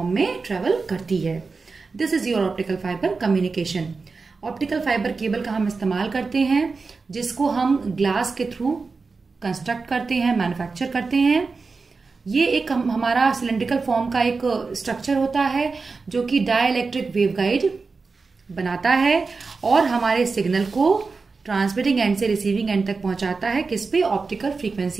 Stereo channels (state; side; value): quieter; left; 4.3 dB